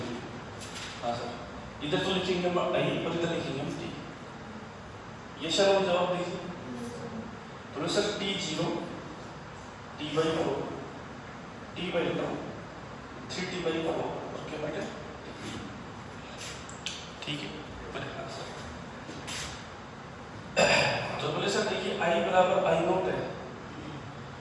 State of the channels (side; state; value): both; identical; correlation 1.00